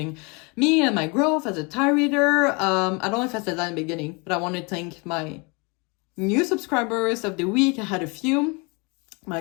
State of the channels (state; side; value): quieter; right; 30.0 dB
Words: me and my growth as a tarot reader. I don't know if I said that in the beginning, but I want to thank my new subscribers of the week. I had a few, my